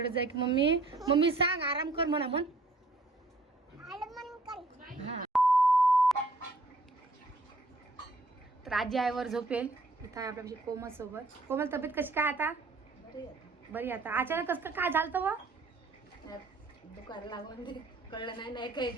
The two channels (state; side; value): quieter; left; 3.0 dB